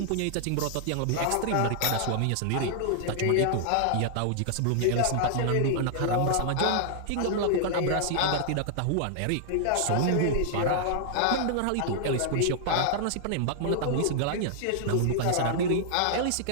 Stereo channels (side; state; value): both; different; correlation -0.01